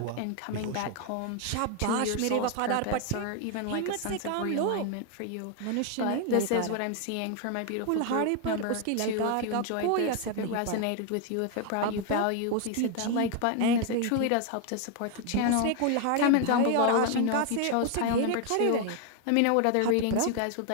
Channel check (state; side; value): different; both; correlation 0.00